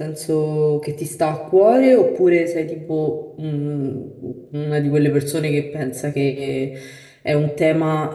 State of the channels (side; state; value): both; identical; correlation 1.00